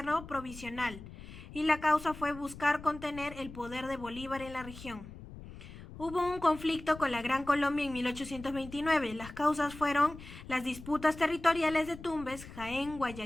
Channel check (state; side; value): noise; left; rumble, 15 dB below the sound